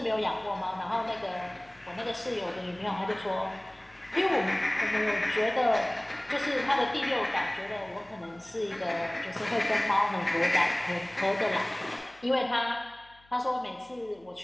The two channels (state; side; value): noise; left; hum, 29 dB below the sound